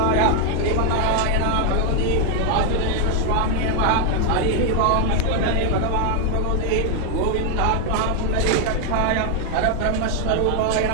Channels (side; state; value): both; different; correlation 0.01